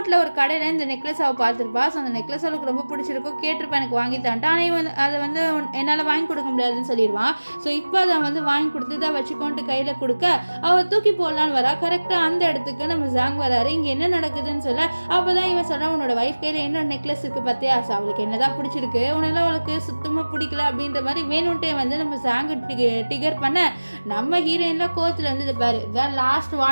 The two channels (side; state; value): both; inverted; correlation -1.00